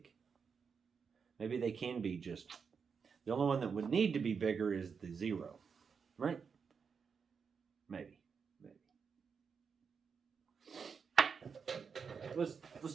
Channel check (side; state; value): left; quieter; 6.0 dB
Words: Maybe they can be just, the only one that would need to be bigger is the 0, right? Maybe.